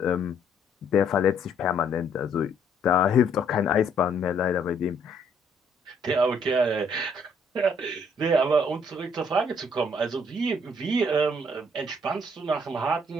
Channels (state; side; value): normal; both; correlation 0.66